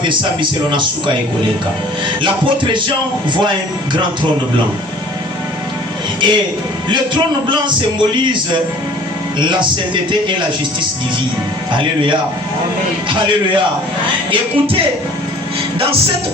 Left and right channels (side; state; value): both; normal; correlation 0.50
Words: L'apôtre Jean voit un grand trône blanc. Et le trône blanc symbolise la sainteté et la justice divine. Alléluia. Amen. Alléluia. Écoutez, dans